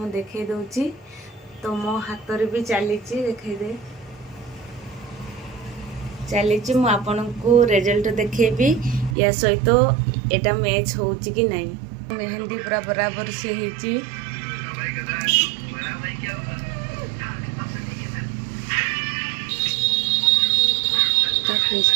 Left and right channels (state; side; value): drops out; left; at 9.2 s